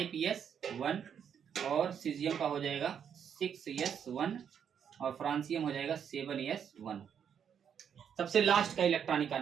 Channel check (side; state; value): left; quieter; 8.0 dB